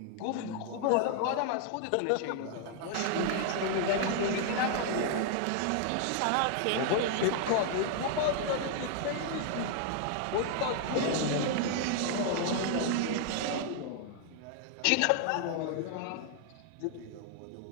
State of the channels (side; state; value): both; different; correlation 0.00